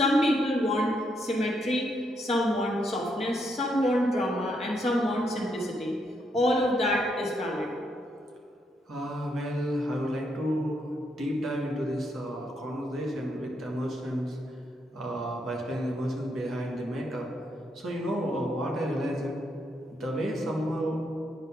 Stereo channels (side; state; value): both; normal; correlation 0.77